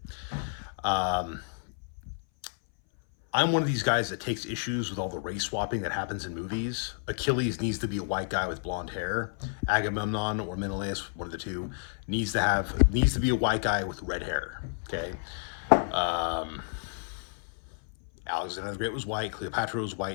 Um, I'm one of these guys that takes issues with all the race swapping that happens in movies. Achilles needs to be a white guy with blonde hair. Agamemnon or Menelaus, one of the two, needs to be a white guy with red hair. Okay. Um, Alexander the Great was white. Cleopatra was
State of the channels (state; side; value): silent; right; 58 dB below the other